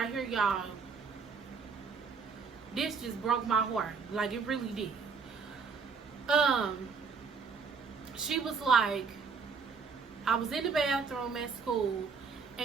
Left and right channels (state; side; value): quieter; left; 5.3 dB